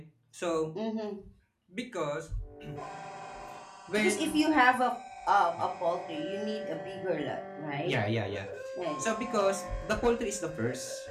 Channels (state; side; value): identical; both; correlation 1.00